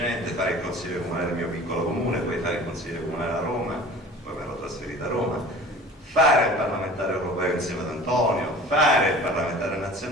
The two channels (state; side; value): normal; both; correlation 0.43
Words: fare il consigliere comunale del mio piccolo comune, poi fare il consigliere comunale a Roma, poi mi ero trasferito a Roma, fare il parlamentare europeo insieme ad Antonio, fare il parlamentare